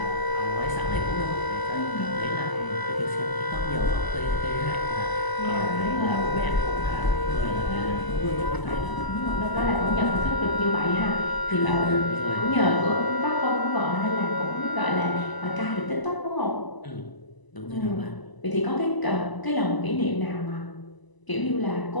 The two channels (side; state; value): right; late; 1.0 ms